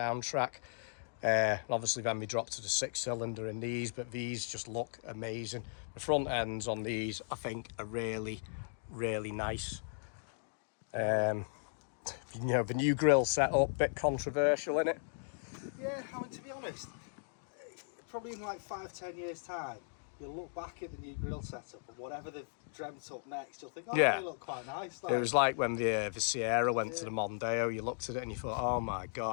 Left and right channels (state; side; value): silent; right; digital silence